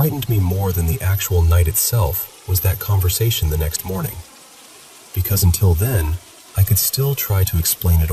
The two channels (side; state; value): both; identical; correlation 1.00